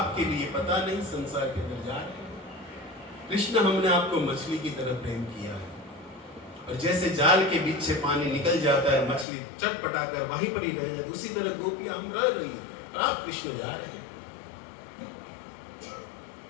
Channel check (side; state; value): right; drops out; at 9.2 s